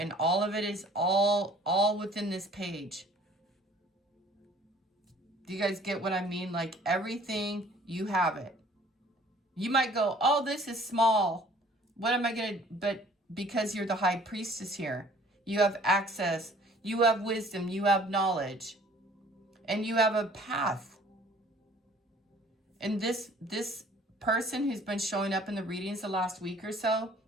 all of it is all within this page. Do you guys get what I mean? Like everything, you have it. You might go, oh, this is small. What am I going to, but because you're the high priestess here, you have access, you have wisdom, you have knowledge, and you have a path. And this person who's been showing up in the readings the last week or so,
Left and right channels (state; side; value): normal; both; correlation 0.54